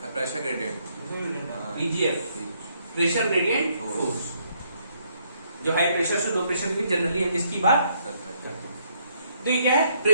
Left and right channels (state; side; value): inverted; both; correlation -0.70